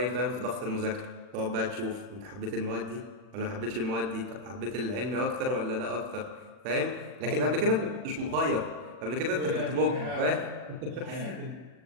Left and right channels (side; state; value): left; late; 40 ms